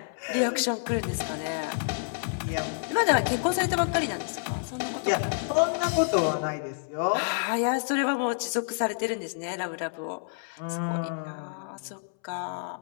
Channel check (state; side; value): silent; right; 59 dB below the other